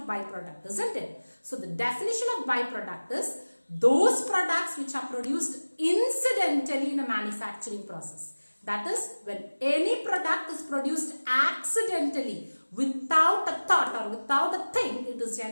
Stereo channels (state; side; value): inverted; both; correlation -1.00